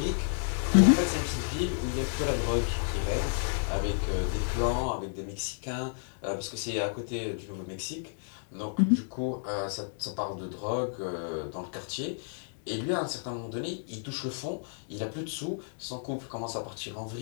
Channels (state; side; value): silent; right; digital silence